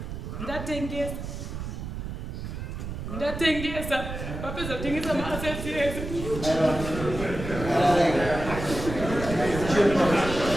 ndatengesa vapedza kutengesa maassets yese.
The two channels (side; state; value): right; noise; rumble, 7 dB below the sound